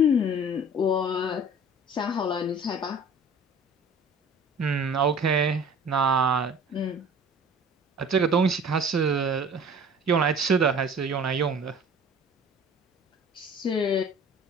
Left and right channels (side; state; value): both; normal; correlation 0.46